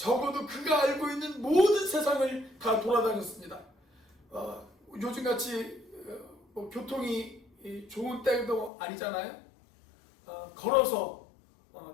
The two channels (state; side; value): drops out; right; at 8.7 s